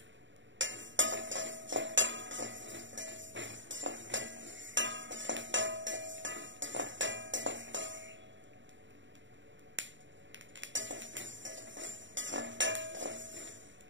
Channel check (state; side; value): late; left; 0.54 ms